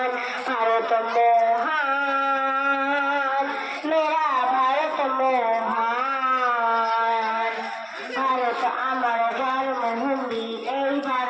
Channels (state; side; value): identical; both; correlation 1.00